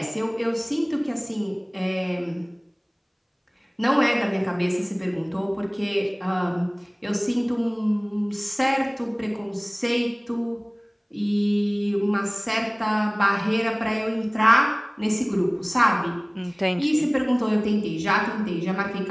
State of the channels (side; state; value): both; identical; correlation 1.00